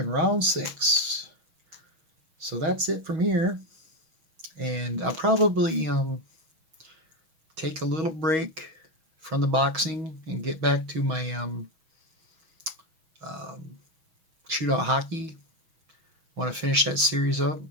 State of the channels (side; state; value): left; late; 6.2 ms